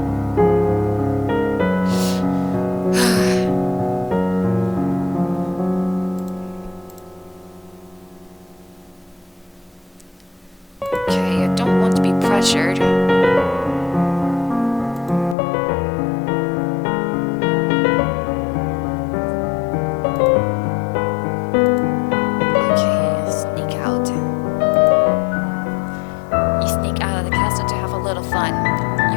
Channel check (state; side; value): drops out; right; at 15.4 s